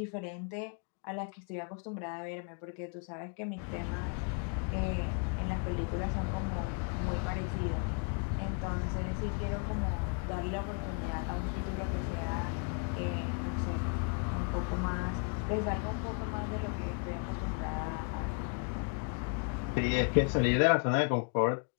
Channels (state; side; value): quieter; right; 36.1 dB